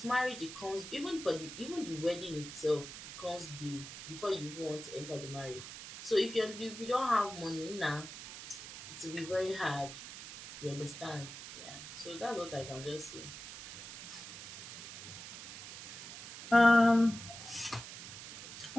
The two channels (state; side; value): noise; right; hiss, 11 dB below the sound